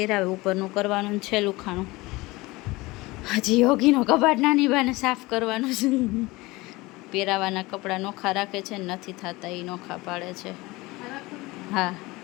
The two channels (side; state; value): right; quieter; 21.6 dB